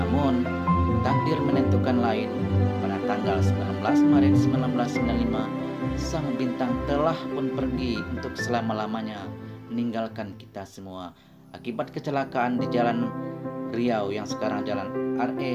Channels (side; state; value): both; identical; correlation 1.00